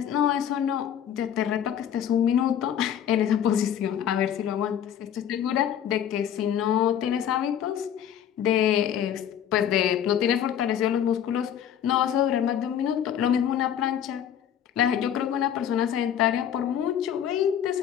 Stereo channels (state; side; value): quieter; right; 9.5 dB